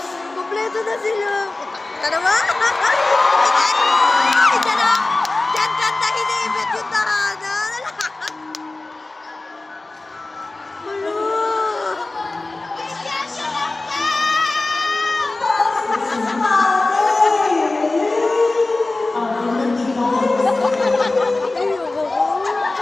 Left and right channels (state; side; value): quieter; right; 3.1 dB